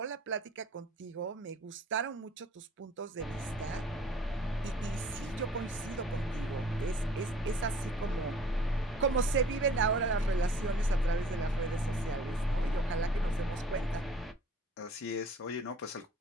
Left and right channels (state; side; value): normal; both; correlation 0.52